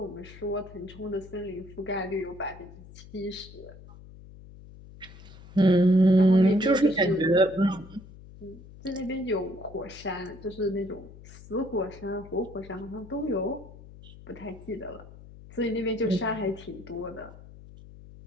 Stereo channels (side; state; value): left; noise; hum, 18 dB below the sound